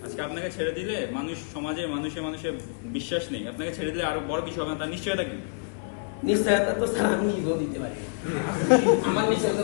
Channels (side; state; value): right; silent; digital silence